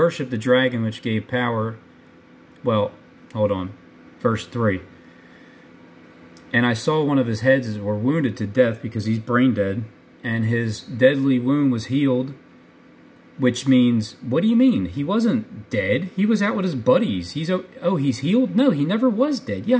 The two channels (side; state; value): both; identical; correlation 1.00